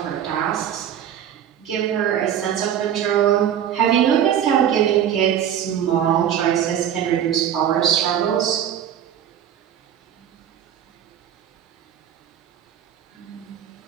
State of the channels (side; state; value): left; quieter; 9.8 dB